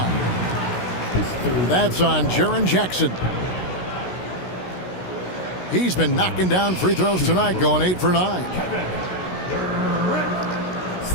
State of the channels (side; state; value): right; late; 16 ms